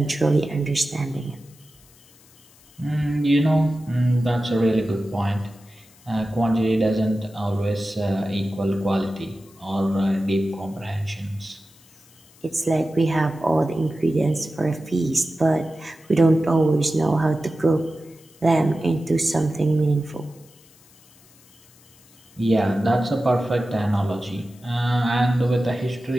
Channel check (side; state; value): left; noise; hiss, 27 dB below the sound